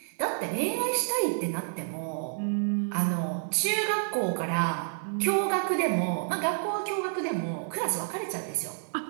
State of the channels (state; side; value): silent; left; digital silence